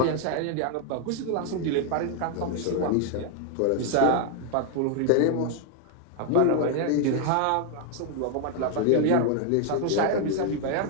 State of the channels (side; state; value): both; different; correlation 0.00